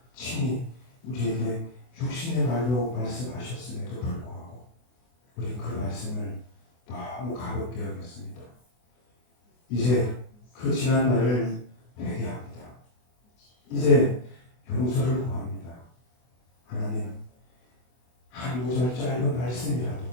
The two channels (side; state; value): right; late; 24 ms